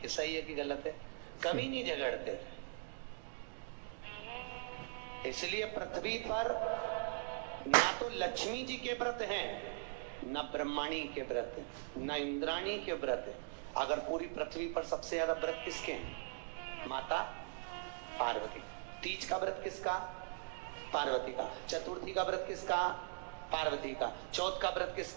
सही है कि गलत है? कभी नहीं झगड़ते थे। इसलिए पृथ्वी पर ना तो लक्ष्मी जी के व्रत हैं, न ब्रह्माणी के व्रत है, न इंद्राणी के व्रत है। अगर पूरी पृथ्वी पर सबसे ज्यादा व्रत किसके हैं? माता पार्वती। तीज का व्रत किसका? पार्वती का। चतुर्थी का व्रत किसका? पार्वती का। चौथ का व्रत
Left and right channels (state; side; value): silent; left; digital silence